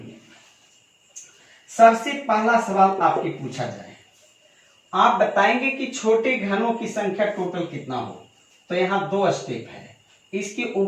सबसे पहला सवाल आपकी पूछा जाए, आप बताएंगे कि छोटे घनों की संख्या टोटल कितना हो। तो यहाँ 2 स्टेप है, इसके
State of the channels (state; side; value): identical; both; correlation 1.00